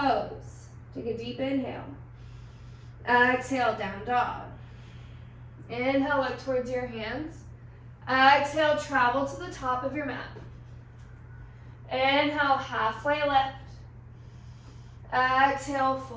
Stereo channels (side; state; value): both; identical; correlation 1.00